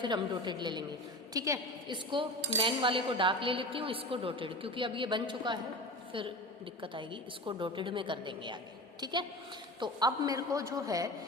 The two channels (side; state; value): both; normal; correlation 0.31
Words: हम डॉटेड ले लेंगे, ठीक है। इसको मैन वाले को डार्क ले लेती हूँ, इसको डॉटेड, क्योंकि अब ये बन चुका है, फिर दिक्कत आएगी, इसको डॉटेड में कर देंगे आगे, ठीक है। तो अब मेरे को जो है